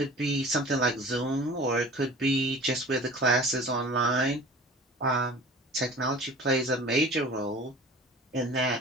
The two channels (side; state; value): both; normal; correlation 0.41